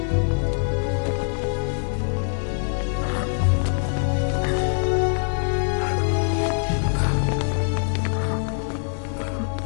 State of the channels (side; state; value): right; silent; 55 dB below the other